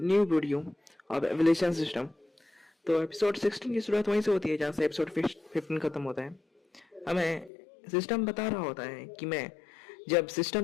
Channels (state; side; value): drops out; right; at 7.5 s